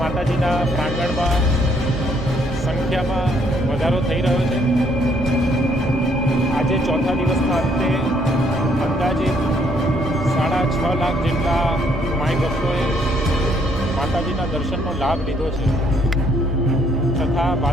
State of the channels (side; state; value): both; normal; correlation 0.68